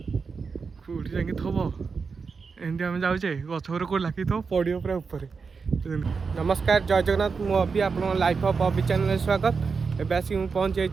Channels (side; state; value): left; quieter; 5.1 dB